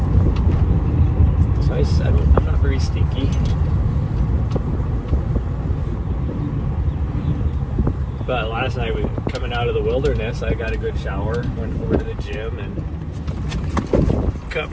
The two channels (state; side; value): identical; both; correlation 1.00